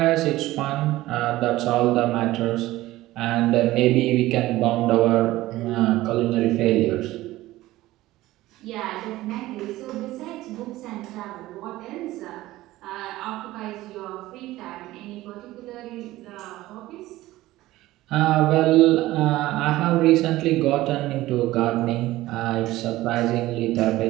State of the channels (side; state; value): left; quieter; 16.9 dB